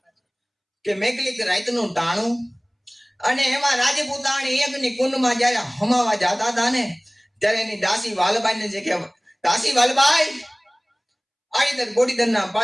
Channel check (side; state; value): both; identical; correlation 1.00